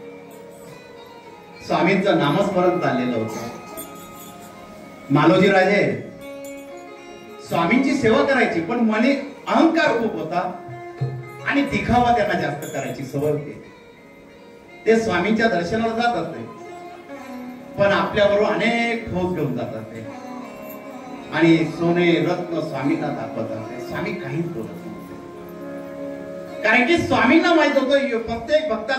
स्वामींचं नामस्मरण चाललेलं होतं। मालोजी राजे स्वामींची सेवा करायची पण मने अहंकार खूप होता आणि दिखावा त्यांना जास्त करायची सवय होती। ते स्वामींच्या दर्शनाला जात असते पण आपल्याबरोबर अनेक ठोस घेऊन जात असते आणि सोने रत्न स्वामींना दाखवत असते। स्वामी काहीच बोलत नव्हते, कारण की स्वामींना माहित होतं प्रत्येक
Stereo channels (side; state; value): both; identical; correlation 1.00